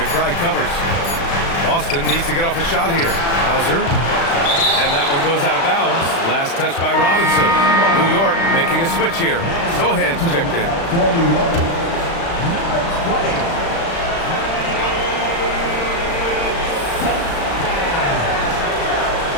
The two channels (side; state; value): right; late; 36 ms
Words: covers. Boston needs to get off a shot here. Hauser. And that one goes out of bounds. Last touch by Robinson. New York making a switch here. Sohan's checked in.